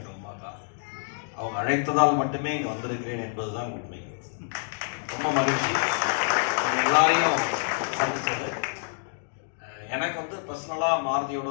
உமா அக்கா. அவங்க அழைத்ததால் மட்டுமே இங்கே வந்திருக்கிறேன் என்பதுதான் உண்மை. ரொம்ப மகிழ்ச்சி எல்லாரையும் சந்திச்சது. எனக்கு வந்து பர்சனலாக மாருதியோட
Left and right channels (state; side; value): silent; right; digital silence